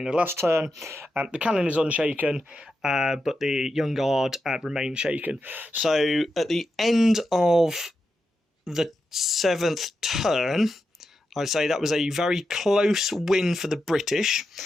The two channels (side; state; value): both; normal; correlation 0.88